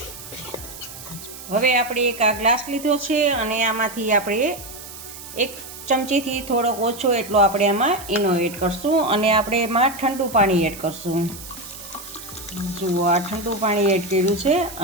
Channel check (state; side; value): noise; right; hiss, 14 dB below the sound